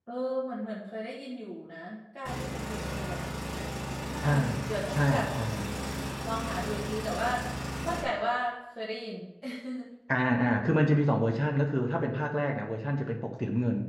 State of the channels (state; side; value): identical; both; correlation 1.00